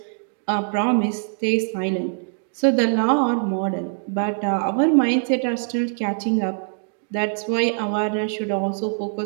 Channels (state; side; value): silent; left; digital silence